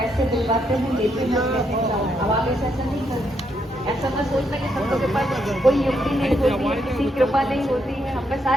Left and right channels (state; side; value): normal; both; correlation 0.77